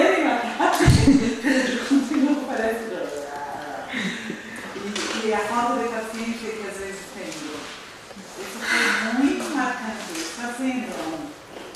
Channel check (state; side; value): identical; both; correlation 1.00